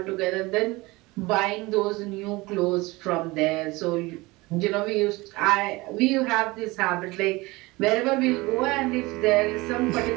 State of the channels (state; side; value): quieter; left; 22.3 dB